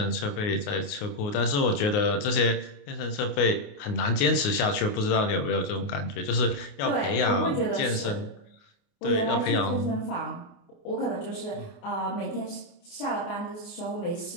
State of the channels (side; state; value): right; late; 28 ms